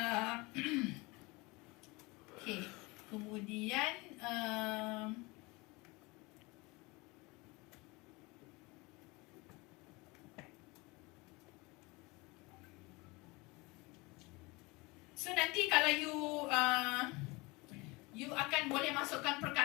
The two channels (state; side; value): quieter; right; 24.7 dB